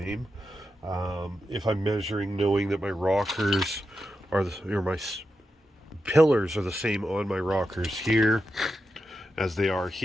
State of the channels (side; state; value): both; normal; correlation 0.88